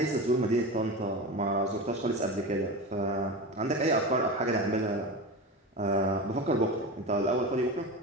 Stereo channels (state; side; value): normal; both; correlation 0.26